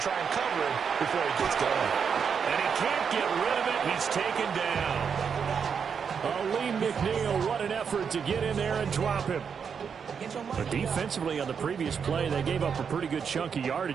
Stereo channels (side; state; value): left; quieter; 6.7 dB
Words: try and cover him before he gets going. And he can't get rid of it. He's taken down. Lee McNeil, what an effort to get in there and drop him. But defensively on the previous play, they gave up a pretty good chunk of